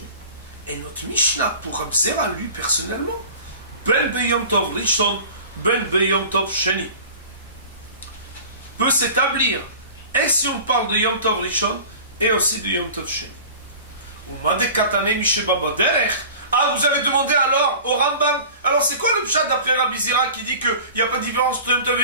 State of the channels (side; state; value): both; inverted; correlation -0.40